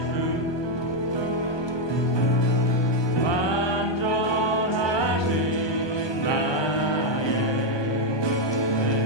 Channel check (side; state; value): right; late; 1.2 ms